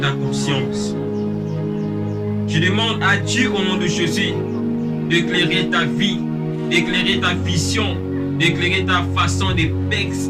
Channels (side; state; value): both; identical; correlation 1.00